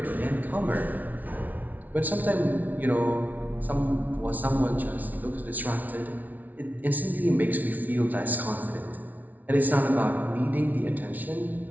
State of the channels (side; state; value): left; late; 0.078 ms